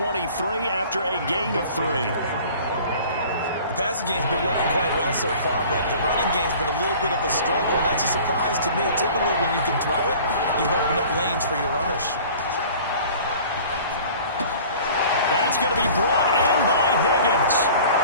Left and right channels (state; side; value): inverted; both; correlation -0.46